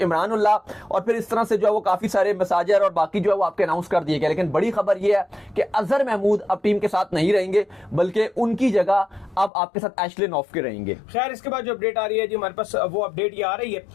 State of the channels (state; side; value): drops out; right; at 9.5 s